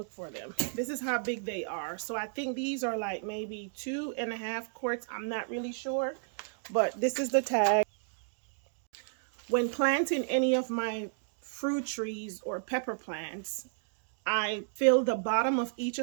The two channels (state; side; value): silent; left; digital silence